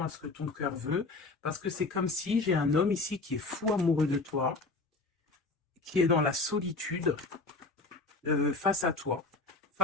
à ce que ton cœur veut, parce que c'est comme si j'ai un homme ici qui est fou amoureux de toi, qui est dans la solitude face à toi,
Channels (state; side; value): quieter; right; 3.5 dB